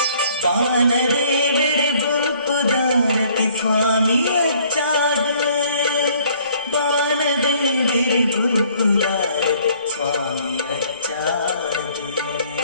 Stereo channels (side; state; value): both; inverted; correlation -0.59